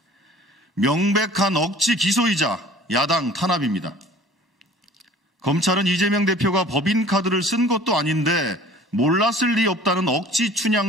명백한 억지 기소이자 야당 탄압입니다. 검찰은 이재명 대표가 법인카드를 쓴 것도 아닌데 몰랐을 리 없다는 억지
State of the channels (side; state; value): both; normal; correlation 0.48